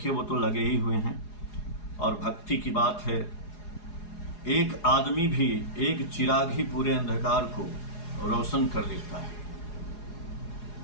वो तो लगे ही हुए हैं। और भक्ति की बात है, एक आदमी भी, एक चिराग ही पूरे अंधकार को रोशन कर देता है।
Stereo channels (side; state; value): right; late; 4.8 ms